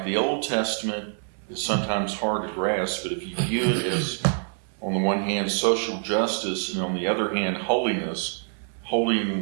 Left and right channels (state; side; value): silent; left; 61 dB below the other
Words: the Old Testament is sometimes hard to grasp, but if you view it as, on the one hand, social justice, and on the other hand, holiness,